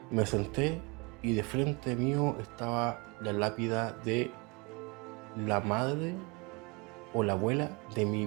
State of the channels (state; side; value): quieter; left; 29.2 dB